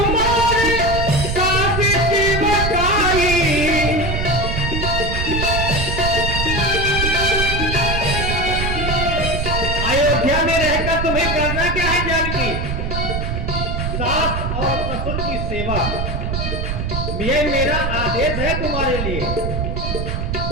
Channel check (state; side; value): noise; right; rumble, 2 dB below the sound